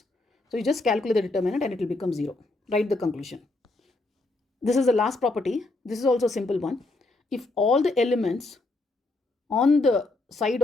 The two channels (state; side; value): quieter; right; 3.0 dB